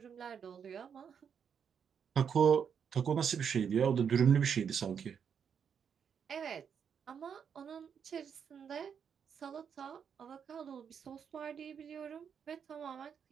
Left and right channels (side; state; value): left; quieter; 7.3 dB